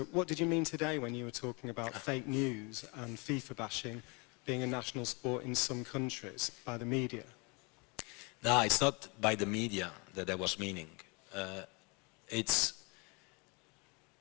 what did you mean today when you were talking about fake news and FIFA bashing being a national sport in some countries by the media? No, it's not by the media that I was meaning. It's,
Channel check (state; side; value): quieter; right; 30.3 dB